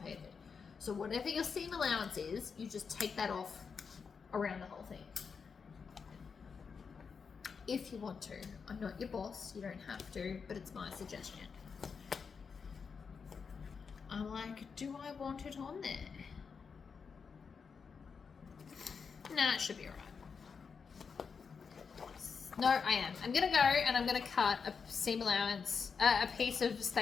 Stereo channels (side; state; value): right; quieter; 5.7 dB